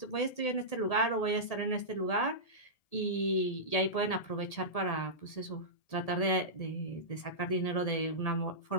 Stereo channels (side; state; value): right; late; 1.8 ms